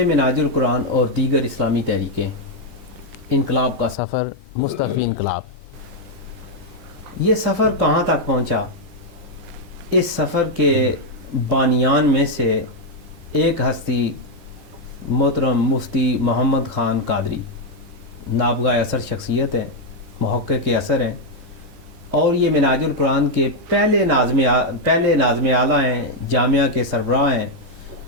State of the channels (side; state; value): left; late; 19 ms